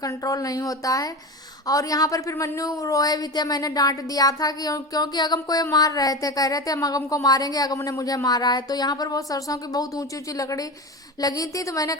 कंट्रोल नहीं होता है। और यहाँ पर फिर मन्नू रोए भी थे, मैंने डांट दिया था कि क्योंकि अगम को ये मार रहे थे, कह रहे थे हम अगम को मारेंगे, अगम ने मुझे मारा है। तो यहाँ पर वो सरसों की बहुत ऊंची ऊंची लकड़ी लगी थी, तो मैंने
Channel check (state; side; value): normal; both; correlation 0.25